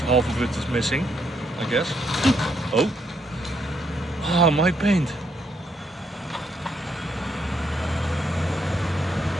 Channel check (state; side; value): normal; both; correlation 0.75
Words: half of it is missing, I guess. Oh. Ah, my paint.